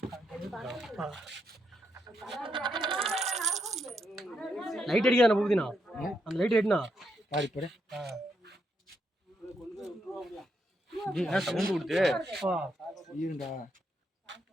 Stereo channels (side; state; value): both; normal; correlation 0.80